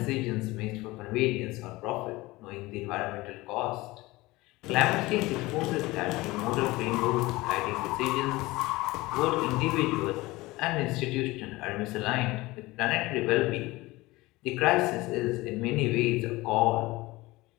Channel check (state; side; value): quieter; right; 20.6 dB